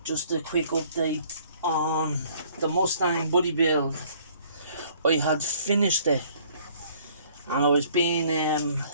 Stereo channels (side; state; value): both; inverted; correlation -0.58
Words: Just a quick update on the Mustang body build. I had finished it and I was being